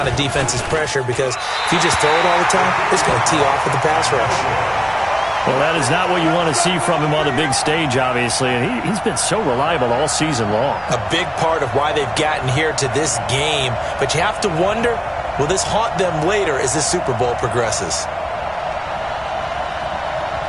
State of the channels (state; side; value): identical; both; correlation 1.00